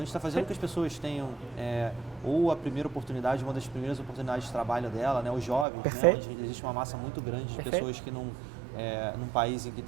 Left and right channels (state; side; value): drops out; left; at 5.7 s